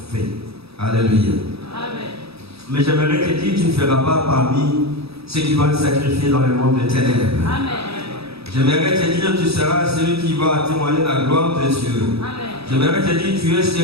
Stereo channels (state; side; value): late; left; 0.78 ms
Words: faits. Alléluia. Amen. Mais j'aimerais te dire, tu ne feras pas parmi ceux qui vont être sacrifiés dans le monde de ténèbres. Amen. J'aimerais te dire, tu seras celui qui va témoigner la gloire de Dieu. Amen. J'aimerais te dire, tu es